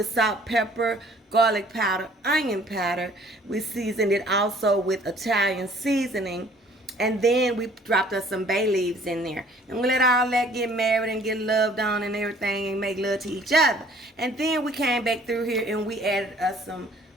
salt, pepper, garlic powder, onion powder. We seasoned it also with Italian seasoning. And then we dropped us some bay leaves in there. And we let all that get married and get loved on and everything and make love to each other. And then we came back through here and we added us some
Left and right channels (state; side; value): normal; both; correlation 0.56